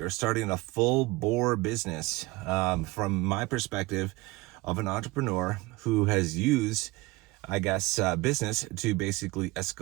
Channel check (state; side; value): quieter; left; 21.6 dB